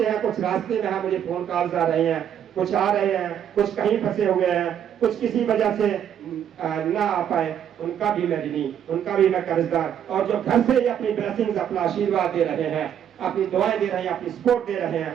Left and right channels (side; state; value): left; quieter; 9.3 dB